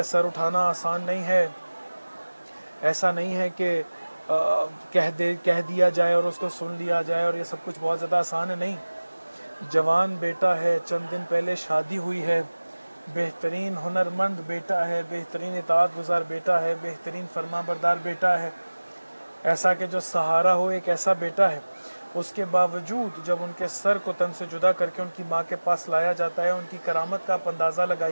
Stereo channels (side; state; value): both; inverted; correlation -1.00